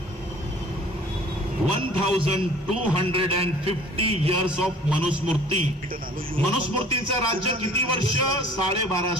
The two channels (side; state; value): both; normal; correlation 0.50